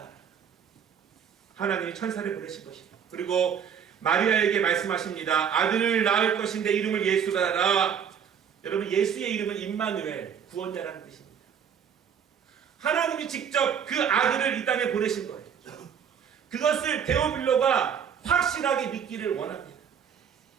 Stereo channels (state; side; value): quieter; left; 7.8 dB